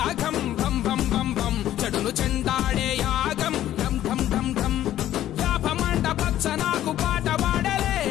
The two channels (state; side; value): quieter; right; 12.7 dB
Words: బం బం బం బం చెడును చెండాడే యాగం ఢం ఢం ఢం ఢం యాపమంట పచ్చ నాకు పాట పాడలే